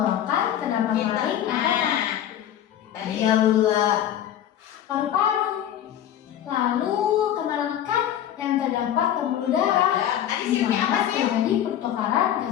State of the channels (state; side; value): quieter; right; 10.8 dB